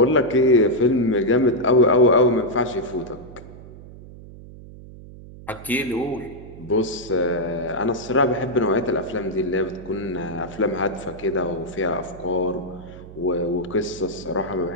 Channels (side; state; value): right; noise; hum, 17 dB below the sound